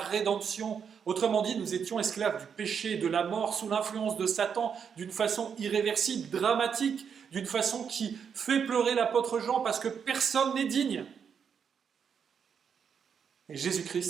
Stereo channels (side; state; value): left; quieter; 7.1 dB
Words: Autrement dit, nous étions esclaves du péché, de la mort, sous l'influence de Satan, d'une façon irréversible, dramatique, d'une façon qui fait pleurer l'apôtre Jean parce que personne n'est digne. Et